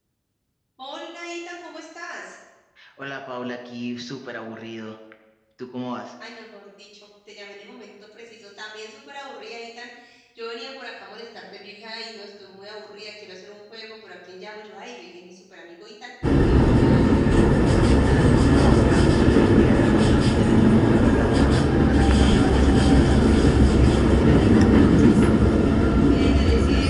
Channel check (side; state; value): both; identical; correlation 1.00